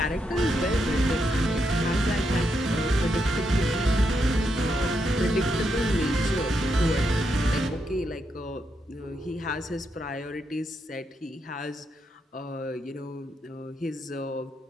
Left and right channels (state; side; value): normal; both; correlation 0.81